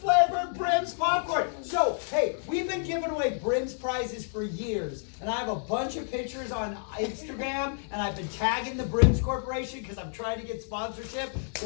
Brim's popcorn. So, hey, we've been giving away Brim's prizes for years, and I have a bunch of pictures on Instagram, and I've been tagging the Brim's Corporation because I'm trying to get sponsorship.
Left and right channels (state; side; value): silent; right; digital silence